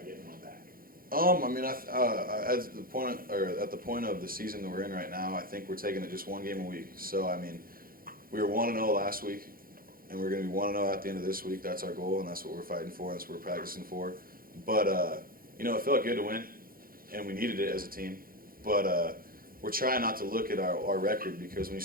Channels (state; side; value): late; left; 0.42 ms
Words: getting one back? I mean, at the point of the season that we're in right now, I think we're taking it just one game a week. So, I mean, we were 1-0 last week, and we're going to be 1-0 at the end of this week. That's our goal, and that's what we're fighting for, and that's what we're practicing for. But, you know, it felt good to win, and we needed it as a team. But we're trying not to look at our record, because when you